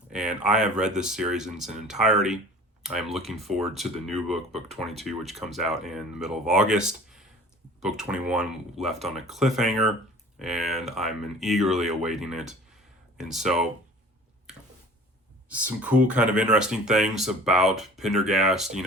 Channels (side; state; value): both; normal; correlation 0.45